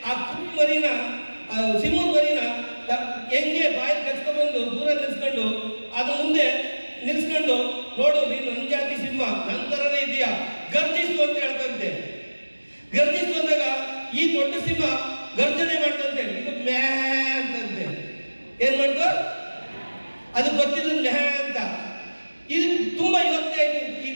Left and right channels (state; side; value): inverted; both; correlation -1.00